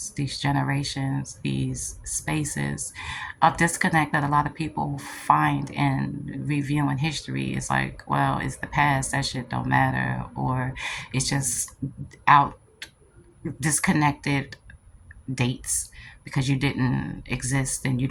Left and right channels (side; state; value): both; identical; correlation 1.00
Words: these generations, these spaces. A disconnect that a lot of people find in reviewing history is like, well, it's the past, that shit don't matter, or it's just out disconnected dates because you didn't exist and you